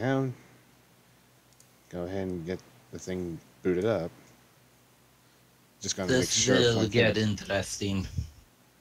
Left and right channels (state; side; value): identical; both; correlation 1.00